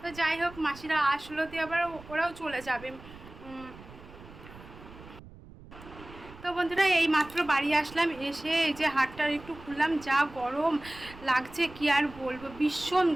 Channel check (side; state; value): right; noise; rumble, 18 dB below the sound